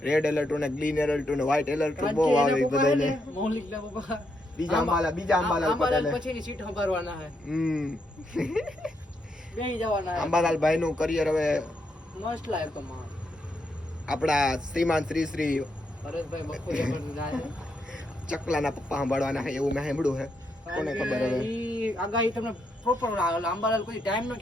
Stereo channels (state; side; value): normal; both; correlation 0.80